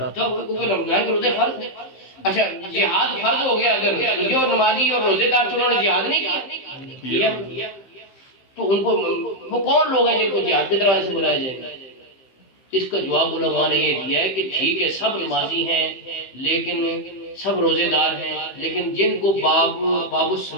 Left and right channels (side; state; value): right; late; 15 ms